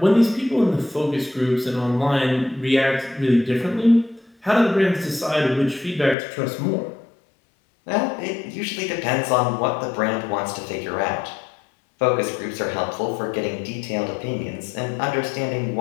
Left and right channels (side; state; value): right; drops out; at 6.2 s